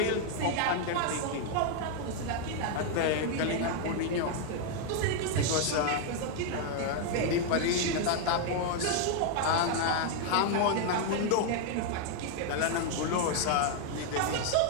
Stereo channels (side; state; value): both; different; correlation 0.00